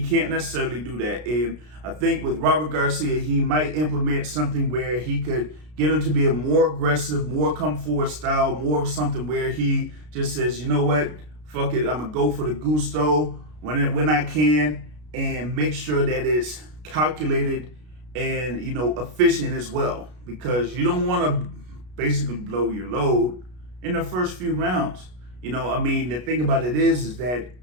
can't necessarily do that. And I think with Robert Garcia, he might implement something where he could get him to be a more aggressive, more come forward style, more of something where he just says, you know what, fuck it, I'm going to go for the gusto when I can, and make sure that it's calculated and, efficient as well. Because you don't want to basically blow your load in the first few rounds. I mean, the thing about it is that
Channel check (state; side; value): late; left; 33 ms